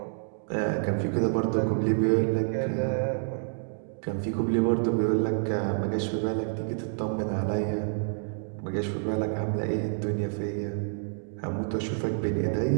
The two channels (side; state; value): left; silent; digital silence